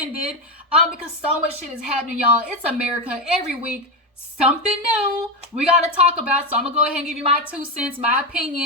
Because so much shit is happening, y'all. It's America. Every week, something new we gotta talk about. So I'm gonna go ahead and give you my 2 cents, my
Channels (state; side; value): normal; both; correlation 0.13